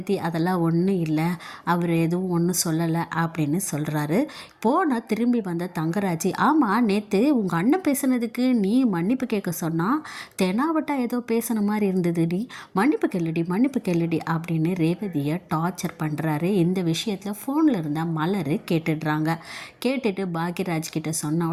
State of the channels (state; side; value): identical; both; correlation 1.00